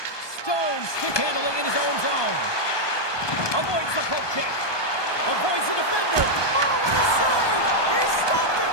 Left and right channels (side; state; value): right; late; 1.2 ms